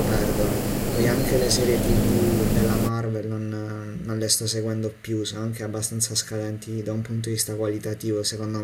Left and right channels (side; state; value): both; identical; correlation 1.00